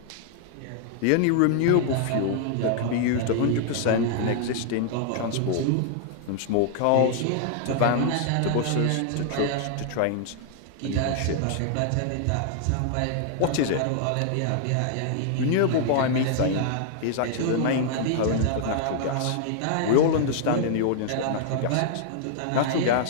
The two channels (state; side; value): different; both; correlation 0.00